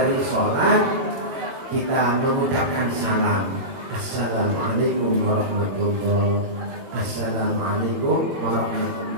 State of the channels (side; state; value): left; late; 22 ms